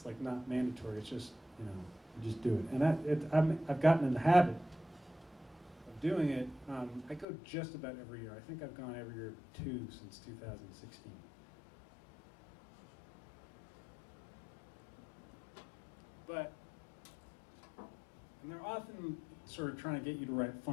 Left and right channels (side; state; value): right; drops out; at 7.2 s